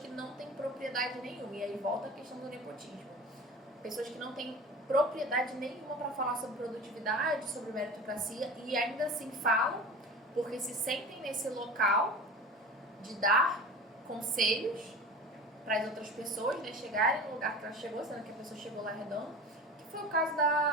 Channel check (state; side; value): normal; both; correlation 0.35